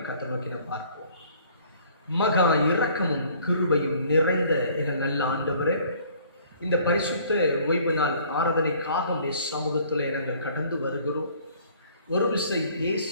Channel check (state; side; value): inverted; both; correlation -0.56